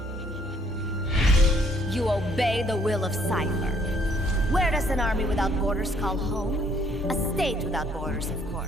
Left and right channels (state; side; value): normal; both; correlation 0.64